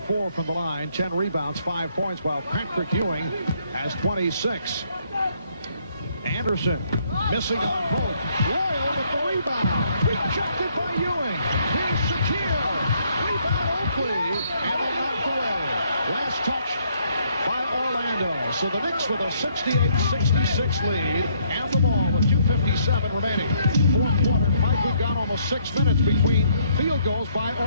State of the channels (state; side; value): inverted; both; correlation -0.68